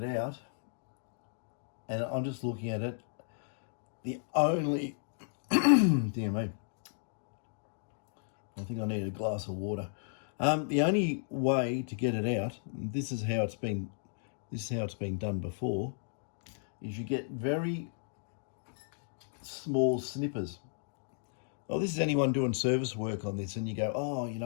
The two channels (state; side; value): silent; right; digital silence